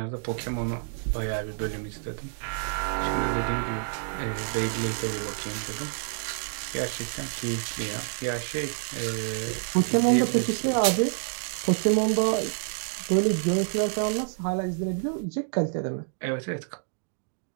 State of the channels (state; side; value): silent; left; digital silence